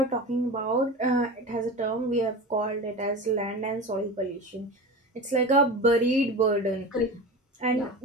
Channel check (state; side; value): normal; both; correlation 0.30